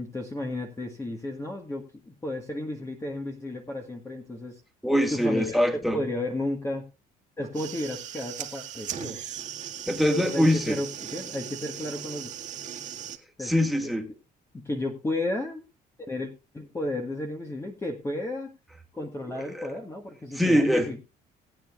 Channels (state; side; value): normal; both; correlation 0.85